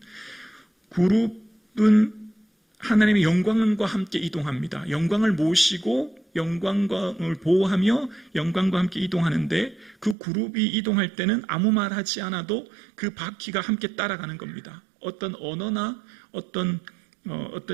하나님의 영광과 함께 이동합니다. 영광을 모시고 영광을 보호하며 영광과 함께 이동하는데, 그 그룹이 이동할 때는 아무 말 하지 않아도 그 바퀴가 함께 따라가는 겁니다. 어떤 언어나 어떤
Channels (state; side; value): drops out; left; at 10.2 s